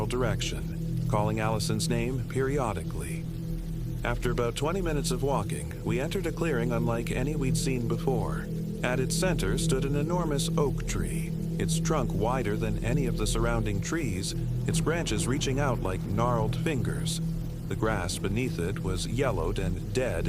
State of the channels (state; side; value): identical; both; correlation 1.00